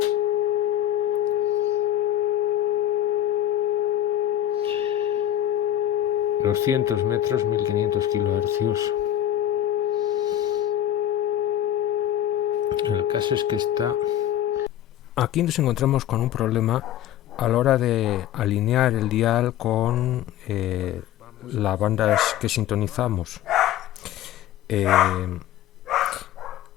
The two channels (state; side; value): quieter; right; 12.1 dB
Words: ...200 metros, 1500 kHz. El caso es que aquí nos encontramos con un problema a la hora de alinear el dial con las bandas que sintonizamos.